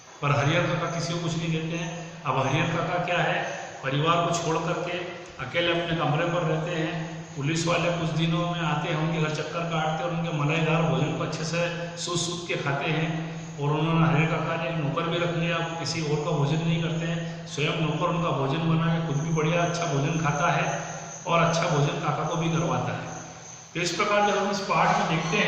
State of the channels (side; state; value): both; identical; correlation 1.00